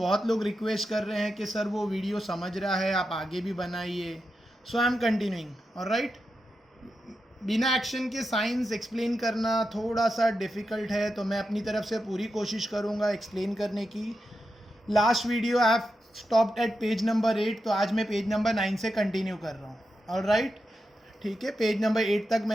लोग रिक्वेस्ट कर रहे हैं कि सर वो वीडियो समझ रहा है, आप आगे भी बनाइए. सो आई एम कंटिन्यूइंग. ऑलराइट. बिना एक्शन के साइंस एक्सप्लेन करना थोड़ा सा डिफ़िकल्ट है, तो मैं अपनी तरफ से पूरी कोशिश करूँगा एक्सप्लेन करने की. Last video I have stopped at page number 8, तो आज मैं पेज नंबर 9 से कंटिन्यू कर रहा हूँ. ऑलराइट. ठीक है, पेज नंबर 8 तक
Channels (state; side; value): normal; both; correlation 0.88